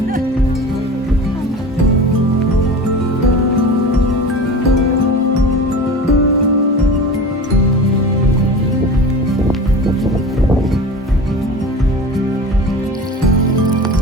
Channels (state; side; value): normal; both; correlation 0.34